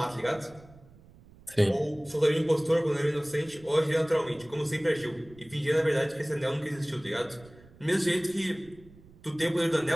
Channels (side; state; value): right; noise; rumble, 24 dB below the sound